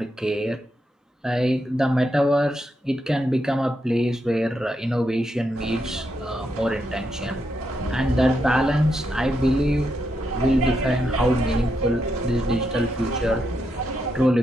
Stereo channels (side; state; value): both; normal; correlation 0.82